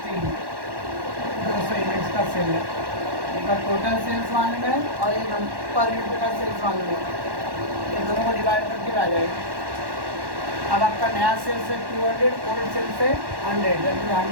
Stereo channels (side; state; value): left; late; 1.1 ms